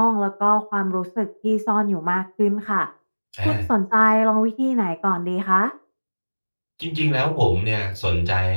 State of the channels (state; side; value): inverted; both; correlation -1.00